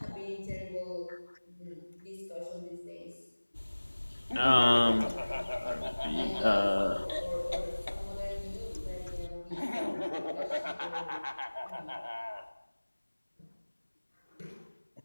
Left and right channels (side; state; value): both; inverted; correlation -1.00